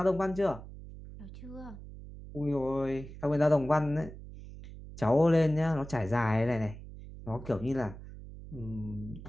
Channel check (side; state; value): right; noise; hum, 14 dB below the sound